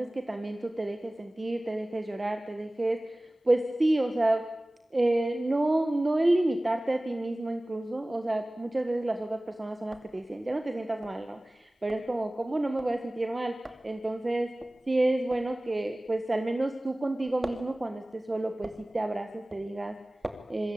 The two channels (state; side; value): normal; both; correlation 0.98